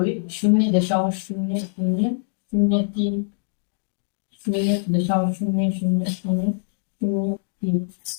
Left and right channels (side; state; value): right; silent; digital silence